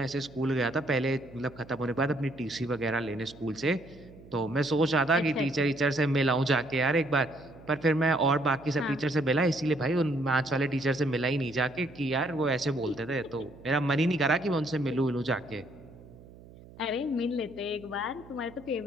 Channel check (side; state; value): right; noise; hum, 20 dB below the sound